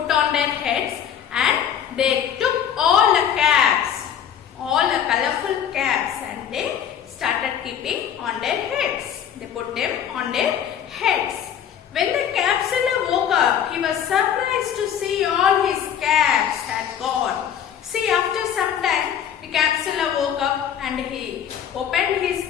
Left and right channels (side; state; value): right; quieter; 9.1 dB